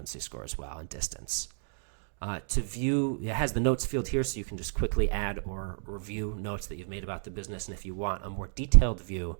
score as well, and distance. To view, it has the notes field here, so you can just quickly add or review notes that you've made about the business. And if you want a more detailed view,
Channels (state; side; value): silent; left; digital silence